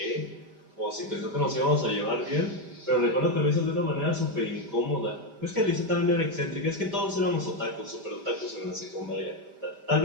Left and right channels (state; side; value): late; left; 5.1 ms